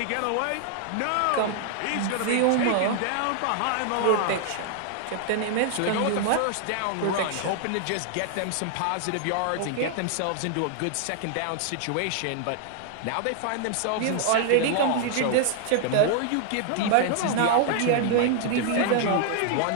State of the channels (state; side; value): different; both; correlation 0.00